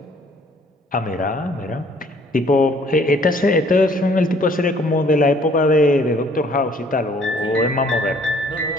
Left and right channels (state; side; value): normal; both; correlation 0.59